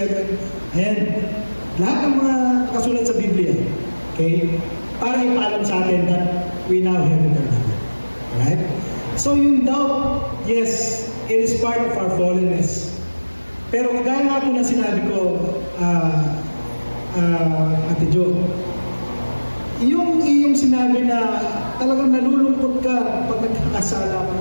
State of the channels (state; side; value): inverted; both; correlation -1.00